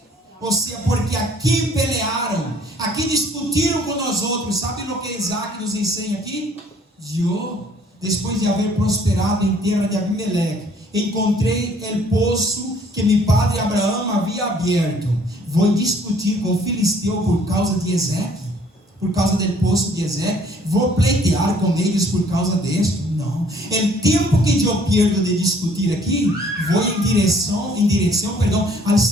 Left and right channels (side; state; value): both; normal; correlation 0.59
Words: Ou seja, porque aqui pelearam, aqui discutiram com nós outros. Sabe o que Isaac nos ensina aqui? Eu, depois de haver prosperado em terra de Abimeleque, encontrei o poço que meu padre Abraão havia aberto. Vou discutir com o filisteu por causa de Ezeque, por causa do poço de Ezeque. Vou pleitear com eles por causa disso. Não. O tempo que eu perdo de discutir aqui, vou em direção, ao